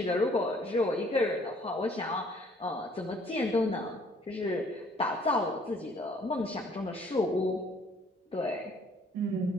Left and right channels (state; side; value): normal; both; correlation 0.60